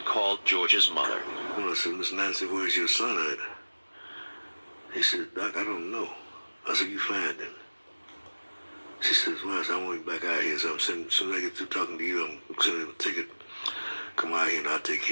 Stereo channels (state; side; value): inverted; both; correlation -1.00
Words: called George's mother. Well, I said, Miss Nancy, where's your son at? He said, Doc, I don't know. I said, you find him. She says, well, I want him back out here. So as soon as I get through talking to you, I'm sending him a ticket. Come out here and I'll take